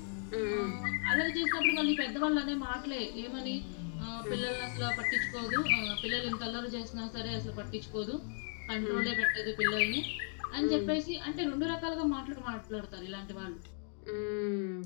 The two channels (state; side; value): silent; right; 54 dB below the other